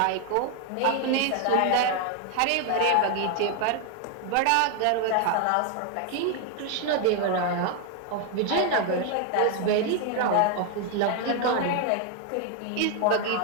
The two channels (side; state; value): both; different; correlation 0.01